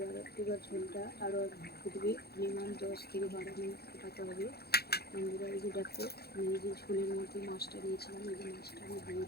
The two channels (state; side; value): late; right; 0.46 ms